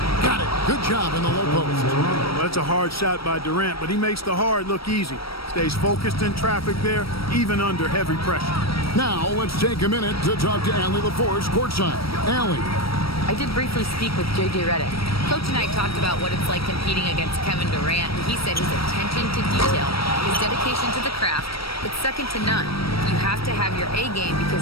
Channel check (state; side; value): late; right; 0.75 ms